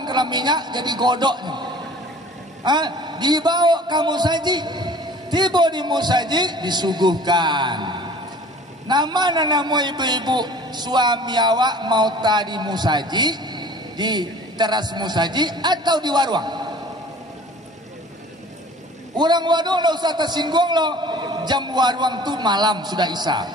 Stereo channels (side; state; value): both; normal; correlation 0.46